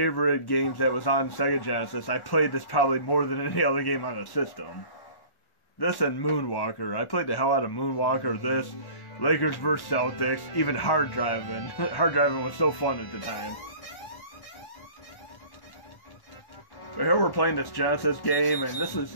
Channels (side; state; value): right; late; 1.1 ms